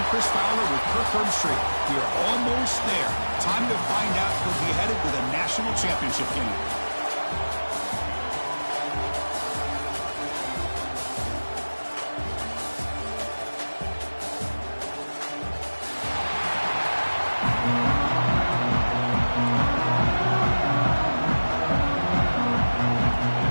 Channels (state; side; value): inverted; both; correlation -1.00